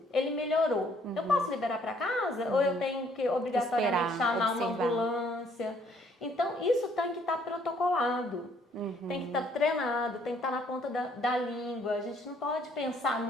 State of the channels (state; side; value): normal; both; correlation 0.64